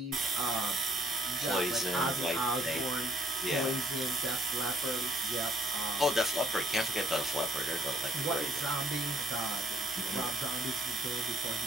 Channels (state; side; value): normal; both; correlation 0.63